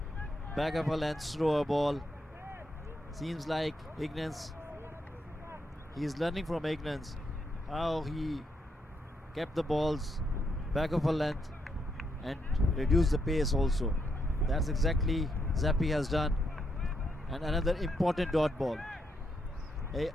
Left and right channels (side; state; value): both; normal; correlation 0.79